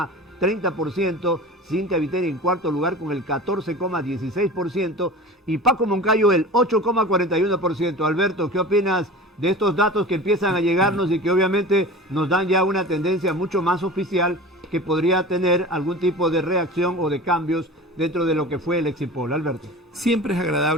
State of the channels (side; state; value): both; normal; correlation 0.35